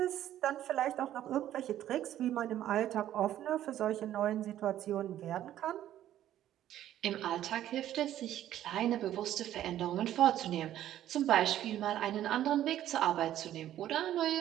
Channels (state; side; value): quieter; left; 12.2 dB